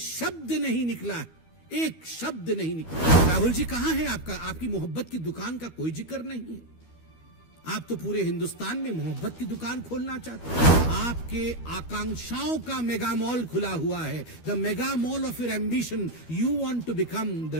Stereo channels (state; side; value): late; right; 12 ms